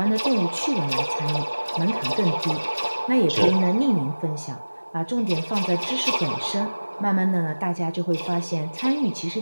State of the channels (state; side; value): inverted; both; correlation -1.00